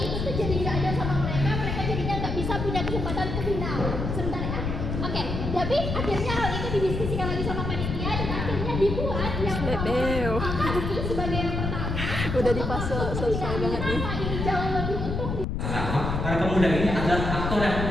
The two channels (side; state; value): left; noise; rumble, 3 dB below the sound